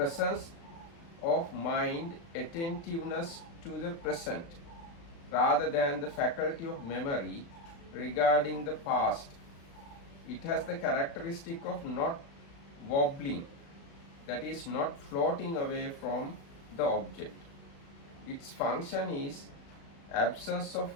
of mind, attentiveness to the present, rather than the faculty of memory regarding the past. It has the characteristic of not wobbling, that is, not floating away from the object. Its function is absence of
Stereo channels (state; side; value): late; right; 35 ms